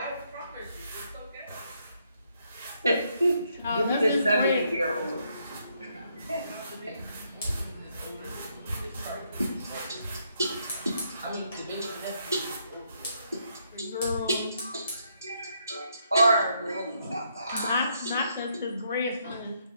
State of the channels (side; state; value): both; inverted; correlation -0.75